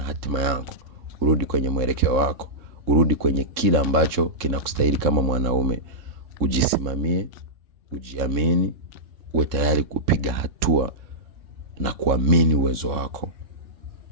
yako, urudi kwenye mwelekeo wako, urudi kwenye kila ambacho kinakustahili kama mwanaume. Ujisimamie, ujiamini, uwe tayari kupiga hatua na kuamini uwezo wako.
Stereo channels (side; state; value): left; late; 3.6 ms